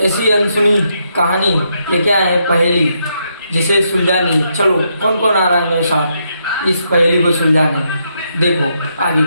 ऐसी अनसुनी कहानी लेके आए हैं, पहेली जिसे सुलझानी। चलो कौन कौन आ रहा है मेरे साथ इस पहेली को सुलझाने। देखो आगे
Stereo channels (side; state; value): both; inverted; correlation -0.78